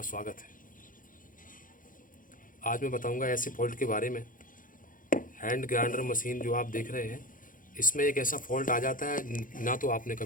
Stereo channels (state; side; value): late; right; 0.39 ms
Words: स्वागत है। आज मैं बताऊंगा ऐसे फॉल्ट के बारे में। हैंड ग्राइंडर मशीन जो आप देख रहे हैं, इसमें एक ऐसा फॉल्ट आ जाता है, ना तो आपने